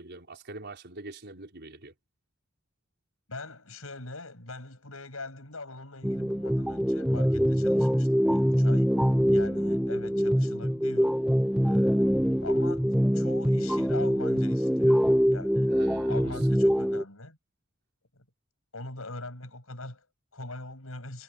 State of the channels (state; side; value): normal; both; correlation 0.97